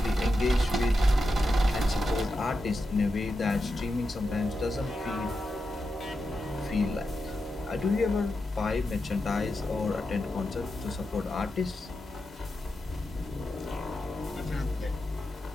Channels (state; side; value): normal; both; correlation 0.88